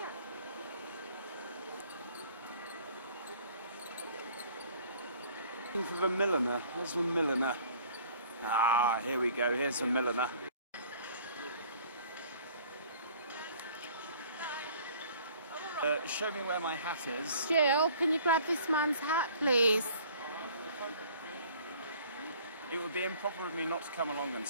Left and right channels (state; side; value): inverted; both; correlation -0.52